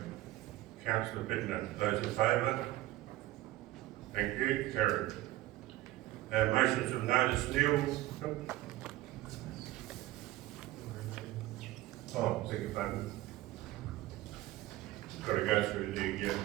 Councillor Bittner. Those in favour? Thank you. Carried. Motions of notice, Neil. Oh, beg your pardon. Got to go through the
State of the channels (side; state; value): left; quieter; 16.4 dB